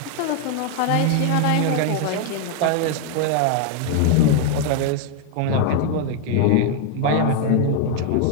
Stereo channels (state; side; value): different; both; correlation 0.00